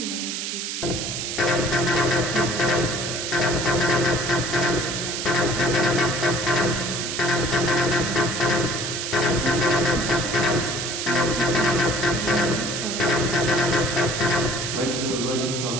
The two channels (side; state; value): right; noise; hiss, 4 dB below the sound